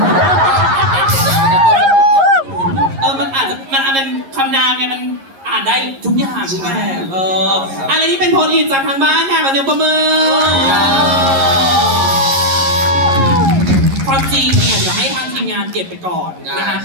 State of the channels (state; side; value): late; left; 11 ms